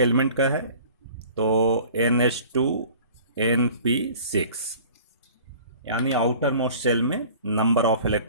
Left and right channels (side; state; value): both; inverted; correlation -0.46